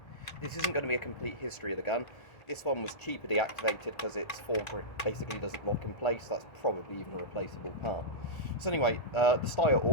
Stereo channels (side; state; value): right; late; 1.4 ms